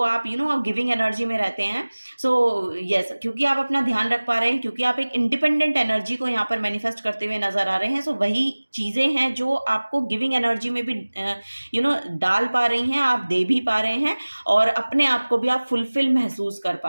आप गिविंग एनर्जी में रहते हैं। सो यस, क्योंकि आप अपना ध्यान रख पा रहे हैं, क्योंकि आप एक इंडिपेंडेंट एनर्जी को यहाँ पर मैनिफेस्ट करते हुए नजर आ रहे हैं। सो वही चीज़ें हैं जो आपको गिविंग एनर्जी में भी डाल पा रही हैं, आप दे भी पा रहे हैं, और अपने आप को भी आप फुलफिल महसूस कर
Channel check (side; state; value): both; inverted; correlation -1.00